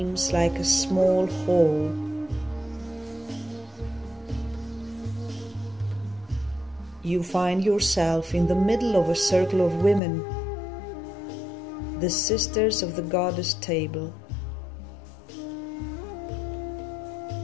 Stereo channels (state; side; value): drops out; right; at 10.0 s